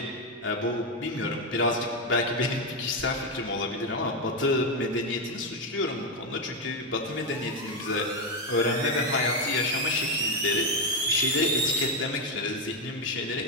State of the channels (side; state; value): both; normal; correlation 0.07